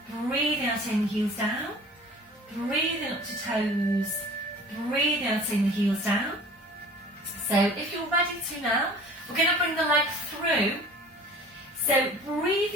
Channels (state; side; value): normal; both; correlation 0.45